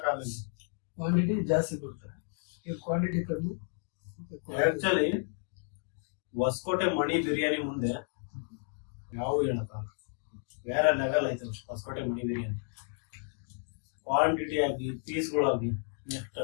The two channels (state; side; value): silent; right; 56 dB below the other